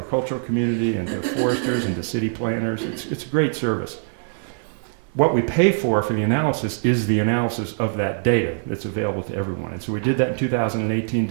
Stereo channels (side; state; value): left; silent; 63 dB below the other